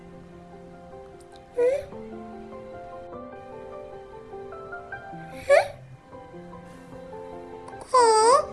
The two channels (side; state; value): both; identical; correlation 1.00